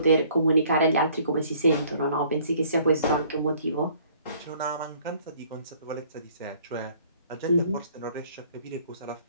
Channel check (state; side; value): inverted; both; correlation -0.58